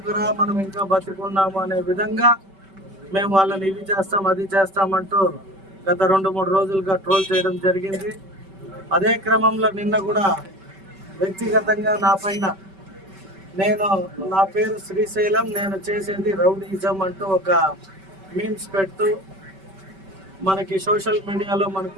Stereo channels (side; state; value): left; late; 5.2 ms